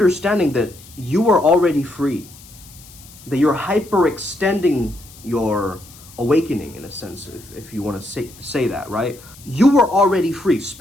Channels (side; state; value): left; noise; hiss, 21 dB below the sound